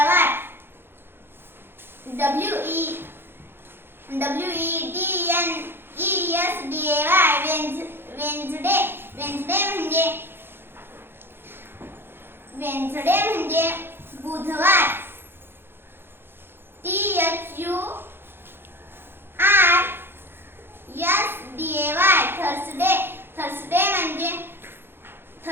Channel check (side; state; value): left; late; 0.10 ms